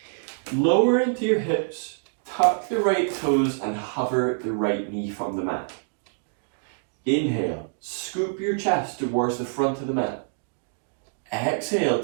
Lower into your hips, tuck the right toes, and hover the right knee from the mat. Inhale, scoop your chest towards the front of the mat. Exhale,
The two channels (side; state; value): left; silent; digital silence